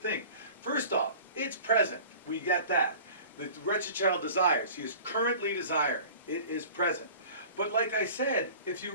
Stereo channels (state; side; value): inverted; both; correlation -0.43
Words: First off, it's present. We get that. The wretched child desires. He is currently desiring. It is present. But like I said, if